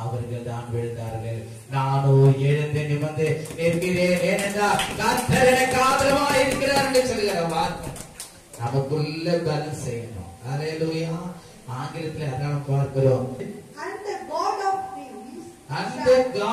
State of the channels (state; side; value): identical; both; correlation 1.00